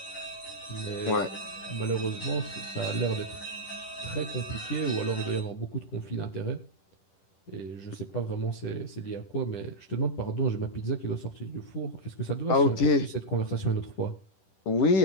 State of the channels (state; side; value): late; right; 10 ms